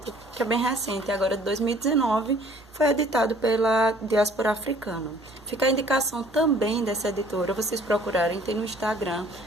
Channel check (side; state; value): both; normal; correlation 0.55